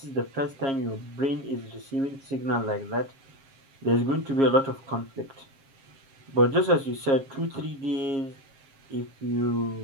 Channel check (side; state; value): left; late; 7.4 ms